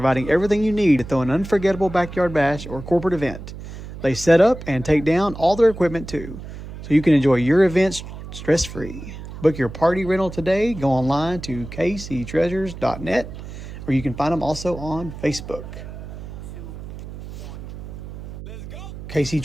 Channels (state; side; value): noise; right; hum, 12 dB below the sound